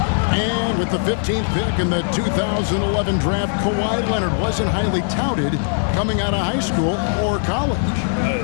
And with the 15th pick in the 2011 draft, Kawhi Leonard wasn't highly touted coming out of high school or college.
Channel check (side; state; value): right; silent; digital silence